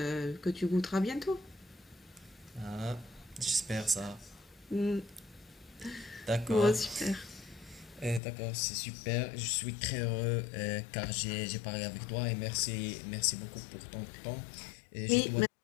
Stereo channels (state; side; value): drops out; right; at 8.2 s